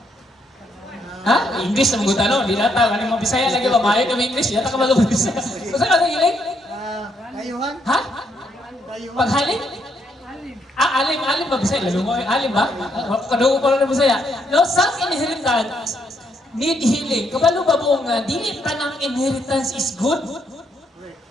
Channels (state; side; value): normal; both; correlation 0.74